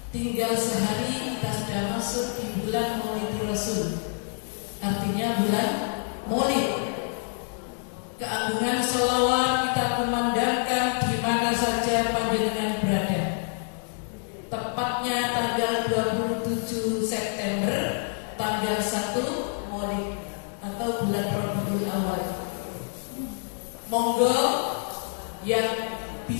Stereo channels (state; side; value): silent; right; 60 dB below the other